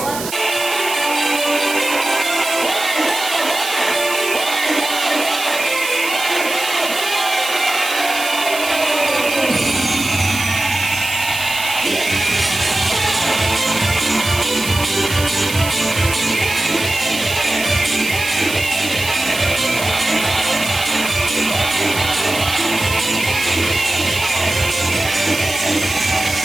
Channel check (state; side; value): noise; right; hiss, 8 dB below the sound